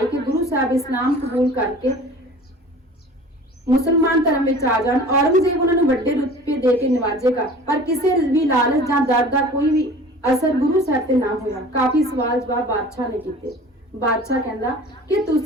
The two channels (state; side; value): normal; both; correlation 0.43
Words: कि गुरु साहब इस्लाम कबूल करके ਮੁਸਲਮਾਨ ਧਰਮ ਵਿੱਚ ਆ ਜਾਣ, ਔਰੰਗਜ਼ੇਬ ਉਹਨਾਂ ਨੂੰ ਵੱਡੇ ਰੁਤਬੇ ਦੇ ਕੇ ਨਿਵਾਜੇਗਾ, ਪਰ ਕਿਸੇ ਵੀ ਲਾਲਚ ਜਾਂ ਡਰ ਦਾ ਕੋਈ ਵੀ ਅਸਰ ਗੁਰੂ ਸਾਹਿਬ ਤੇ ਨਾ ਹੋਇਆ। ਕਾਫੀ ਸਵਾਲ ਜਵਾਬ ਬਾਦਸ਼ਾਹ ਨੇ ਕੀਤੇ। ਬਾਦਸ਼ਾਹ ਕਹਿੰਦਾ ਕਿ